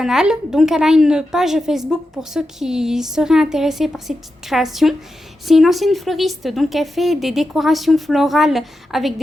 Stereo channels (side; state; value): both; normal; correlation 0.89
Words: Donc elle a une page Facebook pour ceux qui seraient intéressés par ces petites créations. C'est une ancienne fleuriste, donc elle fait des décorations florales avec